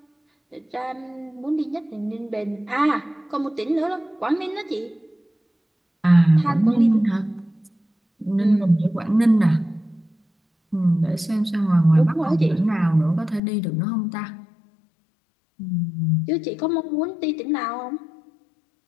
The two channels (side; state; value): right; drops out; at 13.4 s